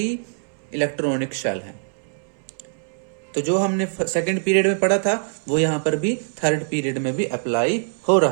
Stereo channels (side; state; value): left; silent; 63 dB below the other